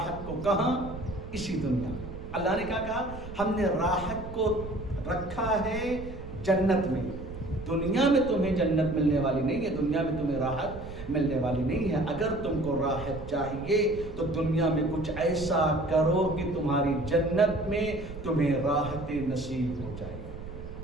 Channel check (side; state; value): right; noise; rumble, 12 dB below the sound